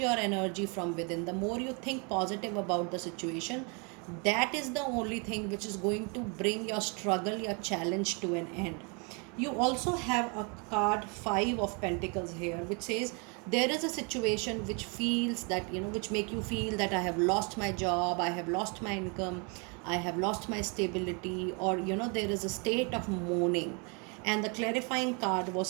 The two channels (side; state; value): left; quieter; 34.2 dB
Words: your energy from within, the more you think positive about the situation, that is the only thing which is going to bring your struggle, your challenge to an end. You also have a card 5 of pentacles here, which says there is a situation which feels that which make you feel that I have lost my job, I have lost my income, I have lost my stability, or there is a state of mourning. And the clarifying card was